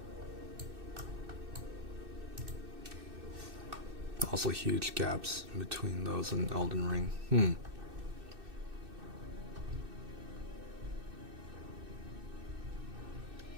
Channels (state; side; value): late; left; 2.6 ms